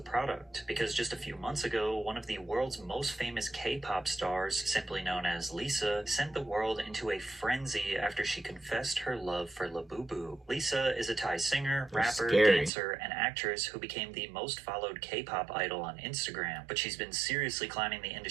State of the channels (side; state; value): left; drops out; at 12.7 s